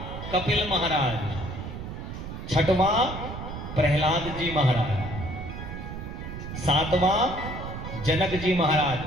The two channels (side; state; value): right; noise; rumble, 8 dB below the sound